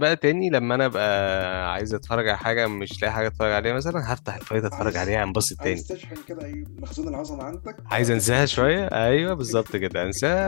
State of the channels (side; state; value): right; silent; digital silence